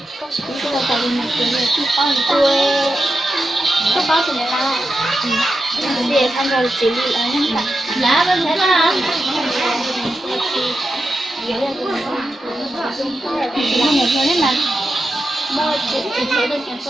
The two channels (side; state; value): both; normal; correlation 0.89